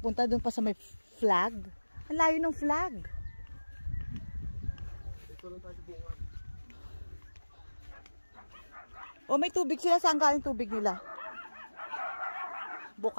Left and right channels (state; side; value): inverted; both; correlation -1.00